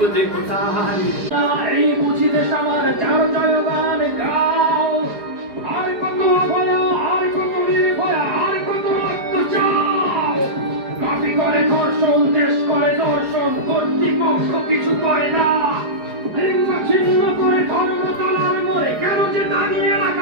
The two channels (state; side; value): late; left; 4.8 ms